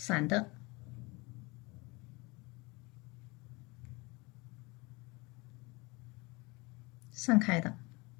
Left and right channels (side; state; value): right; quieter; 25.8 dB